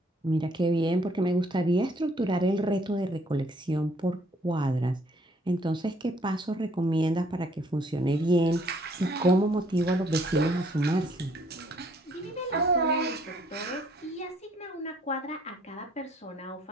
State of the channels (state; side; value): normal; both; correlation 0.64